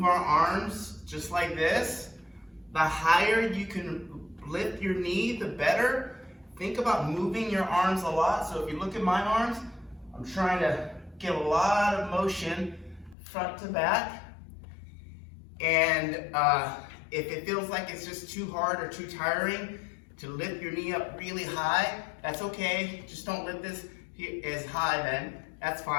our arms just like this. The higher you can lift your knee, the better. Think about moving your arms a lot. So if you look at my arms, I'm trying to get a lot of motion front to back. And if it feels like it's just too hard or too tiring to lift your knee up really high, that's okay. Just don't lift this as high then. That's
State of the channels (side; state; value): right; drops out; at 13.2 s